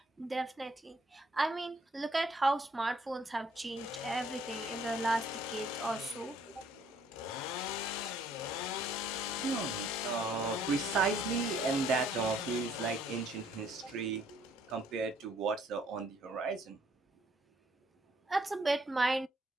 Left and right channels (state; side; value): normal; both; correlation 0.63